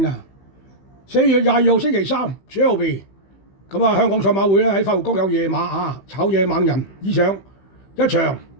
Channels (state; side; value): late; right; 15 ms